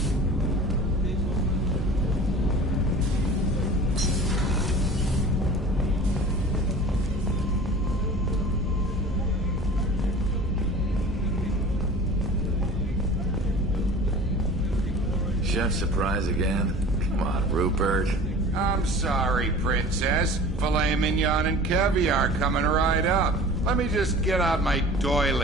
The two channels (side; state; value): both; normal; correlation 0.41